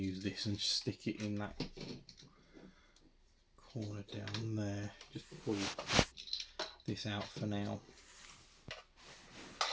this and stick it in that corner down there. Just pull this out for now.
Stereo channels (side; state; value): both; identical; correlation 1.00